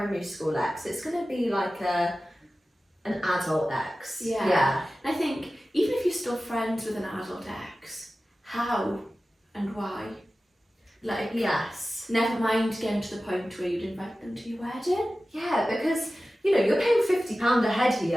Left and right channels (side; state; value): both; normal; correlation 0.95